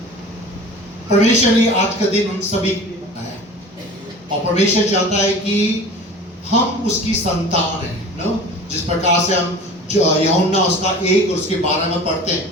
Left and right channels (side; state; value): both; normal; correlation 0.40